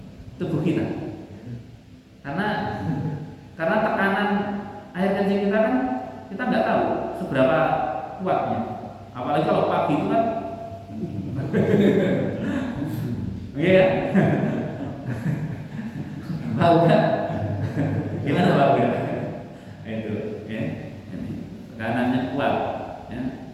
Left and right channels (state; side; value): identical; both; correlation 1.00